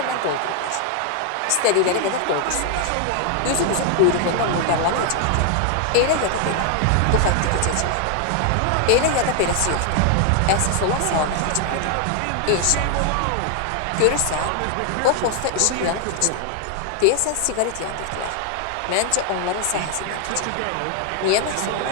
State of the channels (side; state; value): both; different; correlation 0.00